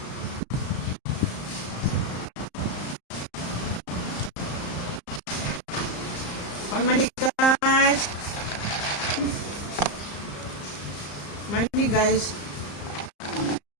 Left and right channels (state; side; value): late; right; 34 ms